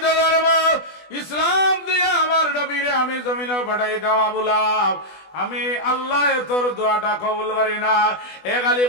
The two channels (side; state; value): right; late; 20 ms